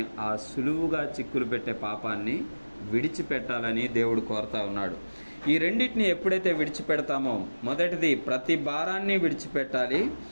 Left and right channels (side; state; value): both; inverted; correlation -1.00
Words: ఆ సులువుగా చిక్కులు పెట్టే పాపాన్ని విడిచిపెట్టాలని దేవుడు కోరుతా ఉన్నాడు. ఈ రెండింటిని ఎప్పుడైతే విడిచిపెడతామో, మొదటిది ప్రతి భారాన్ని విడిచిపెట్టాలి,